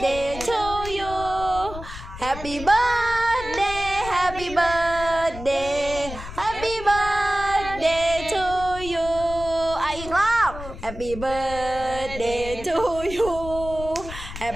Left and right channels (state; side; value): noise; left; rumble, 11 dB below the sound